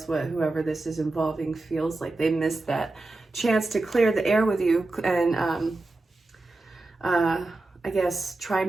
what whoever this is involving feels like. They missed that chance to clear the air with you and I guess try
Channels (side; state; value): left; quieter; 3.0 dB